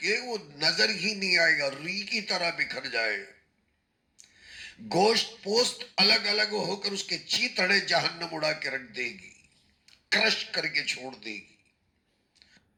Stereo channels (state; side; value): identical; both; correlation 1.00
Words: وہ نظر ہی نہیں آئے گا، ری کی طرح بکھر جائے، گوشت پوست الگ الگ ہو کر اس کے چیتھڑے جہنم اڑا کے رکھ دے گی، کرش کر کے چھوڑ دے گی۔